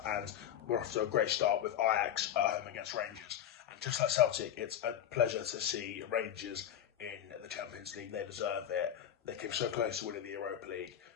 and we're off to a great start with Ajax at home against Rangers. And just like Celtic, it's a pleasure to see Rangers in the Champions League. They deserve it. They came so close to winning the Europa League,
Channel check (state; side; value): quieter; right; 10.2 dB